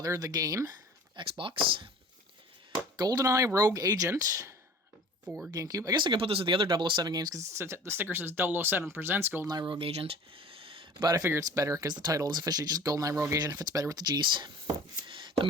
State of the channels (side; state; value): both; normal; correlation 0.43